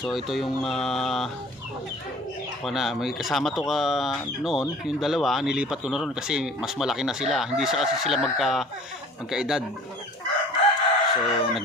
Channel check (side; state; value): both; normal; correlation 0.47